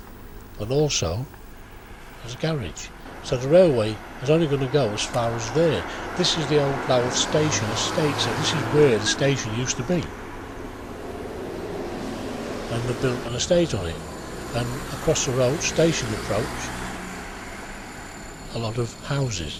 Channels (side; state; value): both; identical; correlation 1.00